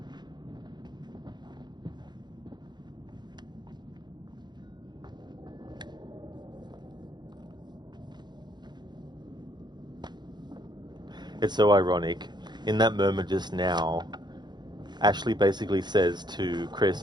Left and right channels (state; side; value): late; left; 0.21 ms